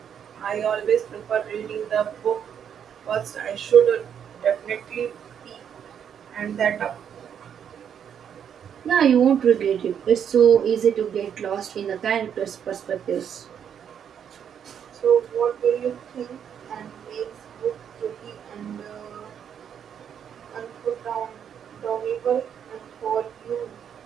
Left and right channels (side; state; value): left; quieter; 8.4 dB